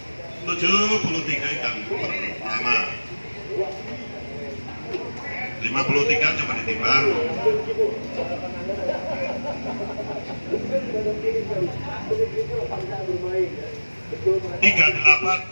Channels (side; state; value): both; inverted; correlation -1.00